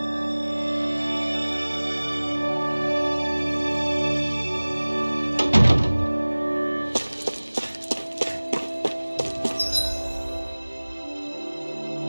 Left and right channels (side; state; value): both; inverted; correlation -1.00